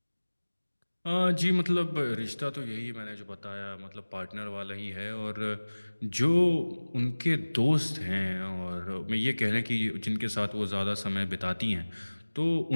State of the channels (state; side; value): inverted; both; correlation -1.00